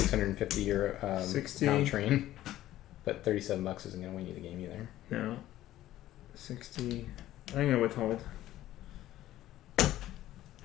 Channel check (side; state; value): right; quieter; 14.2 dB